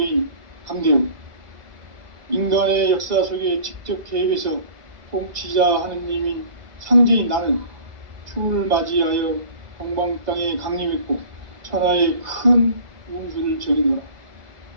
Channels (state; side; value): late; left; 2.0 ms